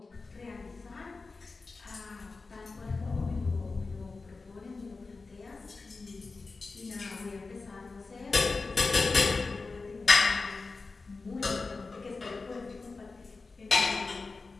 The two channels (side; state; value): right; quieter; 3.9 dB